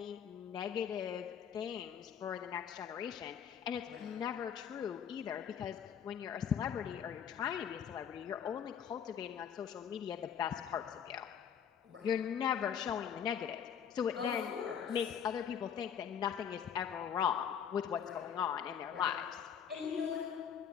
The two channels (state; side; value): quieter; right; 8.2 dB